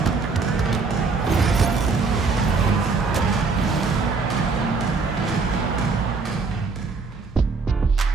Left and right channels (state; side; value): quieter; left; 4.4 dB